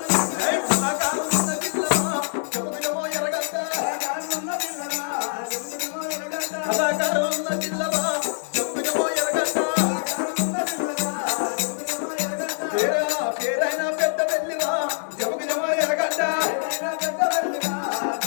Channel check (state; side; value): silent; right; digital silence